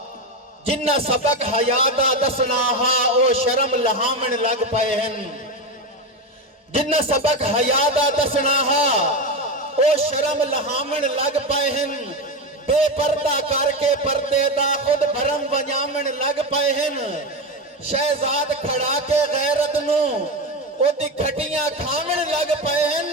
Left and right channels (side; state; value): both; normal; correlation 0.16